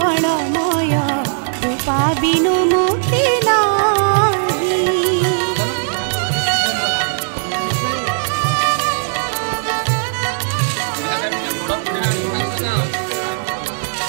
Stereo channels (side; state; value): left; silent; digital silence